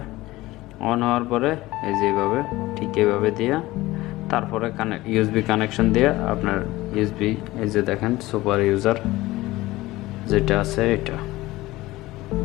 অন হওয়ার পরে এই যে ঠিক এইভাবে দিয়া তারপরে ইউএসবি কানেকশন দিয়ে আপনার ইউএসবি, এই যে দেখেন সুপার ইউজার যেটা আছে এটা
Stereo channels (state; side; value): quieter; right; 18.4 dB